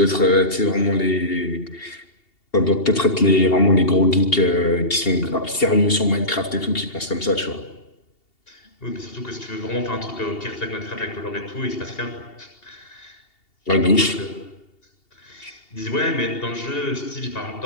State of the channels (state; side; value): late; right; 2.7 ms